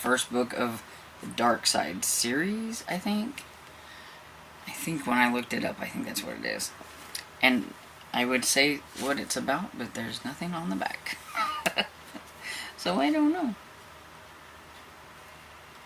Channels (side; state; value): both; identical; correlation 1.00